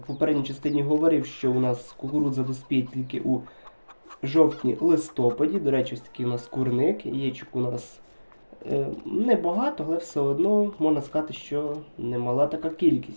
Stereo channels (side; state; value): both; inverted; correlation -1.00